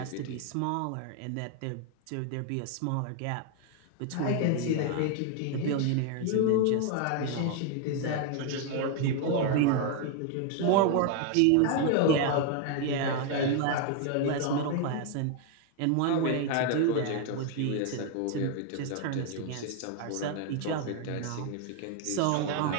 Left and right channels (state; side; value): different; both; correlation 0.01